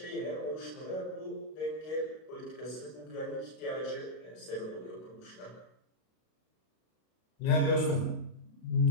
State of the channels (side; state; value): right; late; 32 ms